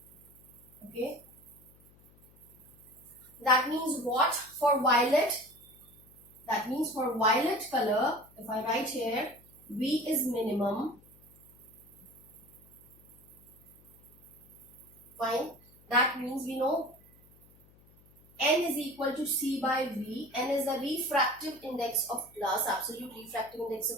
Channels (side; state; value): left; noise; hum, 26 dB below the sound